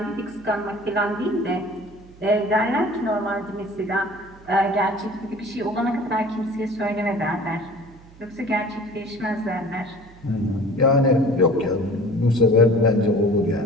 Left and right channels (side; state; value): right; noise; hum, 23 dB below the sound